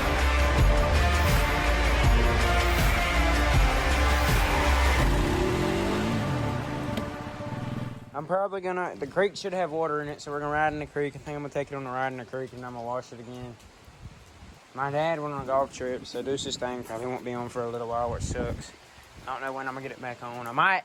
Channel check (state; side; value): identical; both; correlation 1.00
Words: I'm probably gonna, the creek should have water in it, so we're gonna ride in the creek. I think I'm gonna take it on the ride in the creek and I'm gonna wash it again. My dad went on a golf trip, so Deuce's thing probably won't be on for a little while, which sucks. I don't know when I'm gonna get it back on. I